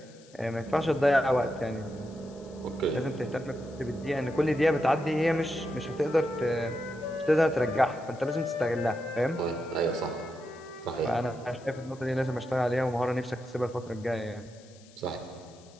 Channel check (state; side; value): noise; left; hiss, 26 dB below the sound